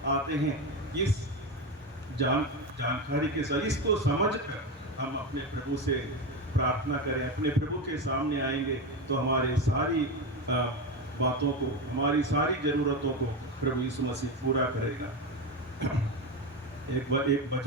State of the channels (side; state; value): both; normal; correlation 0.17